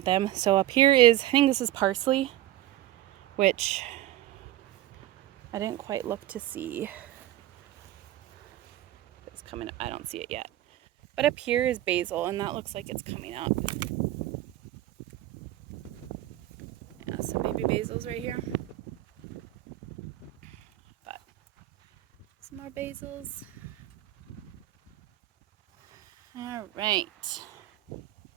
them. So up here is, I think this is parsley, which I didn't quite look to see. It's coming up. I don't see it yet. But up here is basil, and that looks like it's coming up. Yeah, some baby basil's right here. But some more basils. All right.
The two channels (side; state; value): left; quieter; 14.1 dB